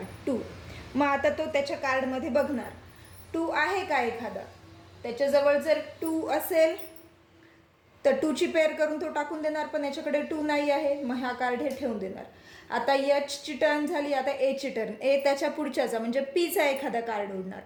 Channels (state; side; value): identical; both; correlation 1.00